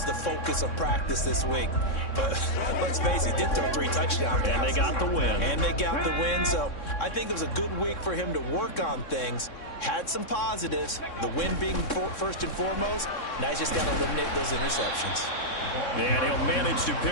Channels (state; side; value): late; right; 3.6 ms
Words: the focus of practice this week. But let's face it, he did throw 3 touchdown passes. And they got the win. And they got the win, so I think it was a good week for him to work on things. Had some positives, the win being first and foremost. Now he's just got to eliminate those interceptions. And he'll manage to